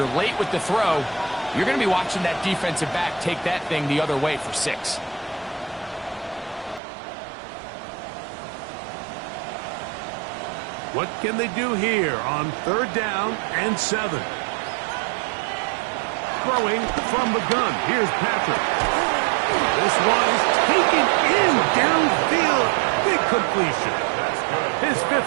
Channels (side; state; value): left; drops out; at 6.8 s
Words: late with the throw, you're going to be watching that defensive back take that thing the other way for 6. What can they do here on third down and 7? Throwing from the gun. Here's Patrick. This one is taken in downfield. Big completion. His 5th